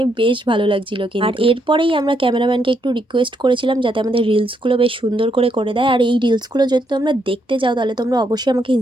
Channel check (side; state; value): both; normal; correlation 0.76